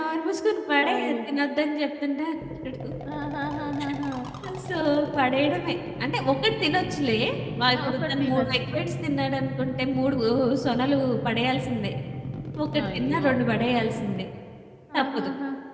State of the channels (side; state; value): both; identical; correlation 1.00